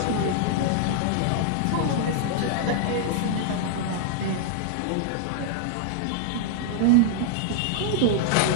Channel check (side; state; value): both; different; correlation -0.01